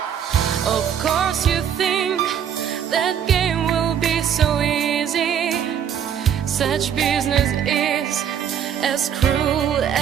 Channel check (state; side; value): quieter; left; 8.7 dB